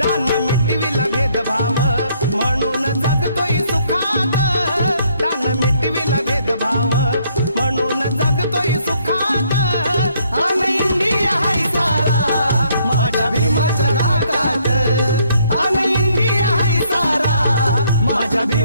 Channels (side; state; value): both; inverted; correlation -0.68